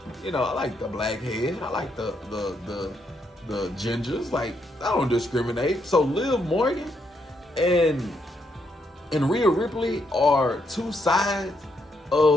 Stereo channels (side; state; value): both; normal; correlation 0.77